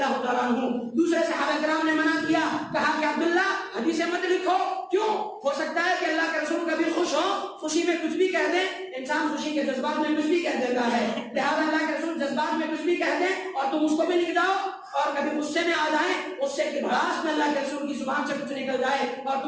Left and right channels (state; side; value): identical; both; correlation 1.00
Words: تعالیٰ عنہ. دوسرے صحابہ کرام نے منع کیا, کہا کہ عبداللہ حدیثیں مت لکھو. کیوں؟ ہو سکتا ہے کہ اللہ کے رسول کبھی خوش ہو, خوشی میں کچھ بھی کہہ دیں. انسان خوشی کے جذبات میں کچھ بھی کہہ دیتا ہے, لہٰذا اللہ کے رسول جذبات میں کچھ بھی کہہ دیں اور تم اس کو بھی لکھ جاؤ, اور کبھی غصے میں آ جائیں, غصے کی بھڑاس میں اللہ کے رسول کی زبان سے کچھ نکل جائے اور